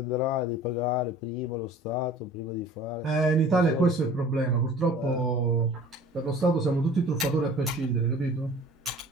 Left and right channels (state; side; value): normal; both; correlation 0.46